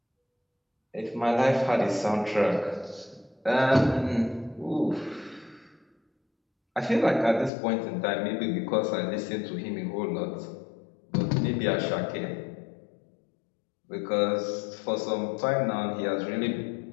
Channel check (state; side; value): drops out; right; at 7.5 s